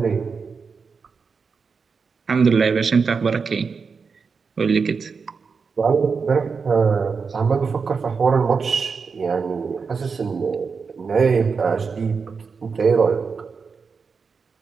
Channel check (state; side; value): quieter; left; 5.3 dB